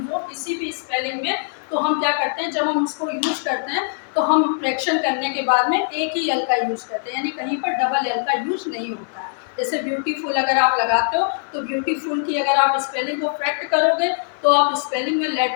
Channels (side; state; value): right; silent; digital silence